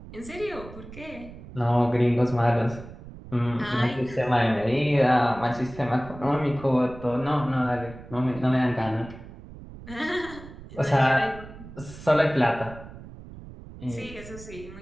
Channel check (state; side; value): noise; right; rumble, 16 dB below the sound